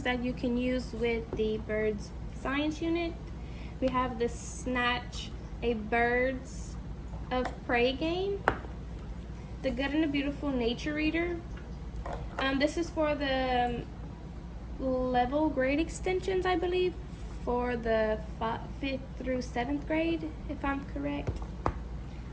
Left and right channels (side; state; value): both; identical; correlation 1.00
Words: that you can use with the birds science unit. We have the Snatch, a birds of prey game. The Good and the Beautiful Nature Reader. This is for the level grade extensions, I believe, for the 5th through 7th grade, if I'm correct.